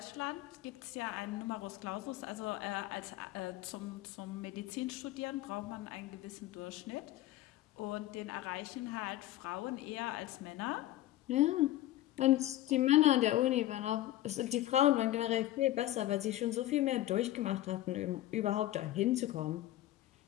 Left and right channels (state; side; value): quieter; right; 14.9 dB